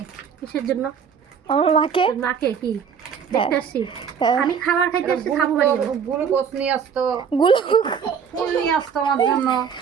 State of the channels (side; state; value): left; quieter; 7.0 dB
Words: কিসের জন্য? আমার মাকে মাকে কি দেখতে আসছি? হ্যাঁ। আমি খাবার খাইতে আসছি, খাবো বাড়ি যাবো। গ্লুকোজ নিয়ে আসতো, গুলো ফুল নিয়ে আসতো আমার জন্য।